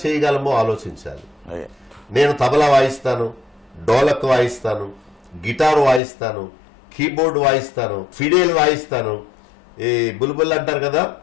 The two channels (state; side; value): drops out; right; at 6.0 s